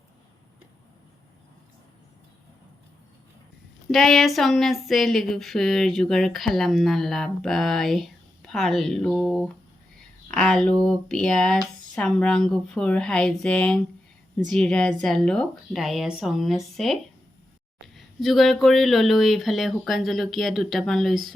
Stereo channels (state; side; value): normal; both; correlation 0.88